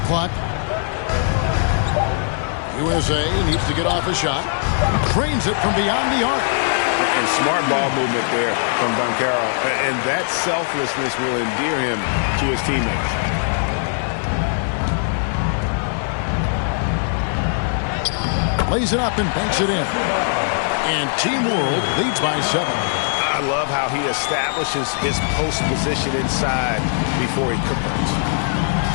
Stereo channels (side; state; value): right; silent; 66 dB below the other